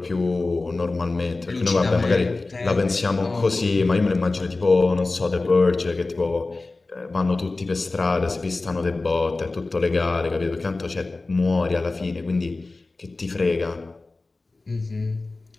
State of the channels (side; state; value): right; quieter; 3.4 dB